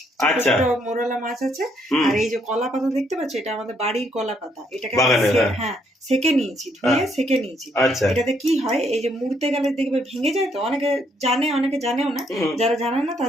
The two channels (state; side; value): normal; both; correlation 0.71